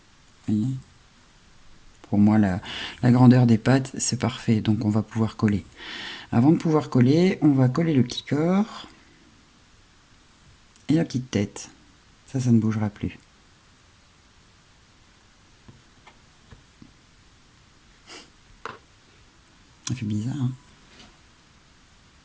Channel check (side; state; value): both; identical; correlation 1.00